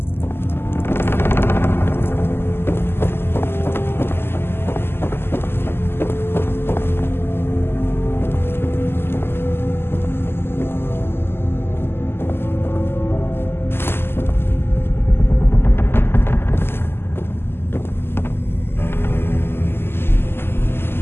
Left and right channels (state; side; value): late; right; 0.11 ms